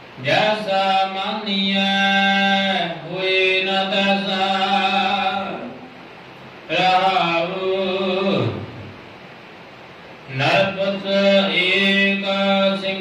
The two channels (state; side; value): identical; both; correlation 1.00